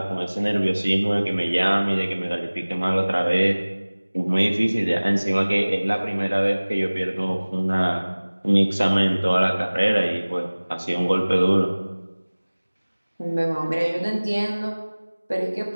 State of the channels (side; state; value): both; inverted; correlation -1.00